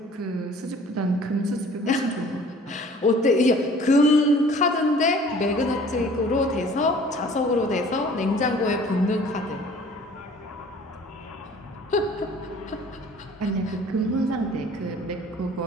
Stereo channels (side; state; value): both; normal; correlation 0.51